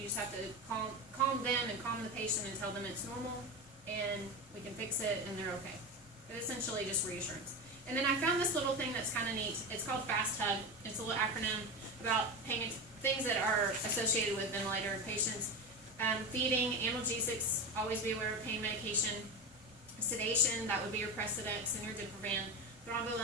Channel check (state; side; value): normal; both; correlation 0.21